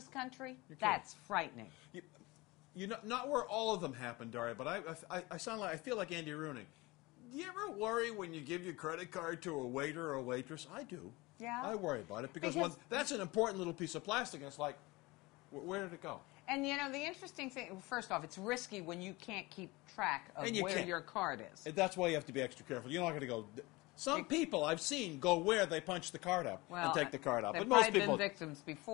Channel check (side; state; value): right; quieter; 22.6 dB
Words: country? That's frightening. You know, not where all of them happen, Daria, but I feel like Andy Rooney. Do you ever worry when you give your credit card to a waiter or a waitress? I do. Yeah. I worry about it because that's an important little piece of plastic, and it's like, where did it go? And, you know, the interesting thing, first off, it's risky when you can't keep track of where your card is. And that's why you have to be extra careful. You're not going to go... Some people I've seen go where they punch the card up and take the card out. They've but most people been victims